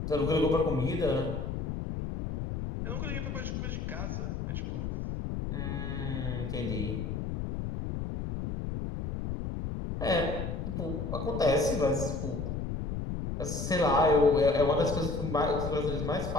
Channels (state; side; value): noise; left; rumble, 4 dB below the sound